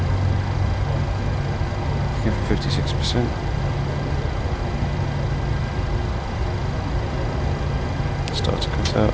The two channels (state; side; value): identical; both; correlation 1.00